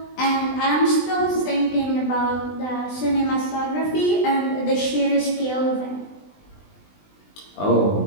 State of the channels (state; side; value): late; right; 20 ms